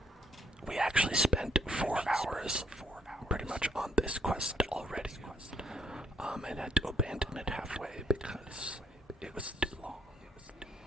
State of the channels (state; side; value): normal; both; correlation 0.70